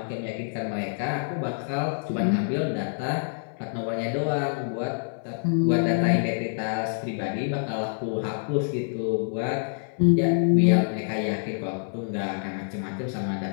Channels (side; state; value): right; silent; 61 dB below the other